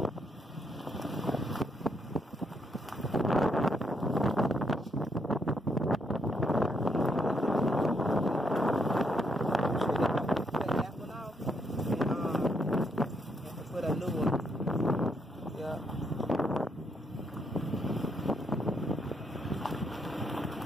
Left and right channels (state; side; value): normal; both; correlation 0.75